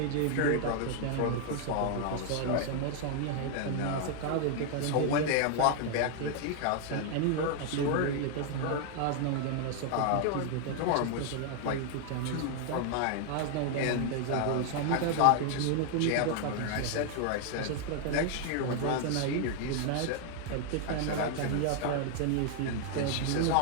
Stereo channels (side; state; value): both; different; correlation 0.00